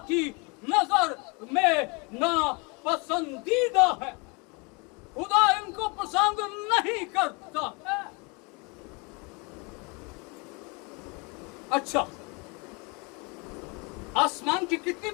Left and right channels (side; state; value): right; quieter; 30.5 dB